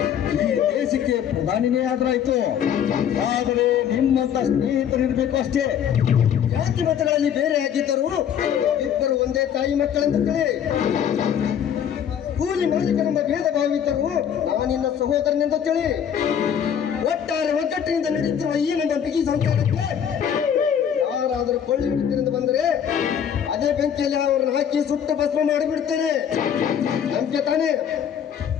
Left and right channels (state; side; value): quieter; right; 8.7 dB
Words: ಈ ದೇಶಕ್ಕೆ ಪ್ರಧಾನಿನೇ ಆದ್ರಾಯ್ತು. ಆದರೆ ನಿಮ್ಮಂತ ಸ್ನೇಹಿತರಿರ್ಬೇಕು ಅಷ್ಟೇ. ಜಾತಿ ಮತಗಳಲ್ಲಿ ಬೇರೆ ಆಗಿದ್ದರು ಇಬ್ಬರು ಒಂದೇ ತಾಯಿ ಮಕ್ಕಳೆಂದು ತಿಳಿ. ಕೂಲಿ ಮಾಲೀಕನೆಂಬ ಭೇದ ಭಾವಿದ್ದರು ನಾನಿನ್ನ ಸಹೋದರನೆಂದು ತಿಳಿ. ಒಟ್ಟಾರೆ ಒಗ್ಗಟ್ಟಿನಿಂದ ನಡೆಯುತ್ತಿರುವ ಈ ನಮ್ಮ ಬಿಗಿ ಸಂಸಾರಕ್ಕೆ ಯಾರಾದರೂ ಕೊಳ್ಳಿ ಹಿಡಿತನೆಂದು ಬಂದರೆ ಅದೇ ಬೆಂಕಿಯಲ್ಲಿ ಅವರನ್ನು ಹಾಕಿ ಸುಟ್ಟು ಭಸ್ಮ ಮಾಡಿಬಿಡ್ತೇನೆ. ನಂಬಿಕೆ ತಾನೇ?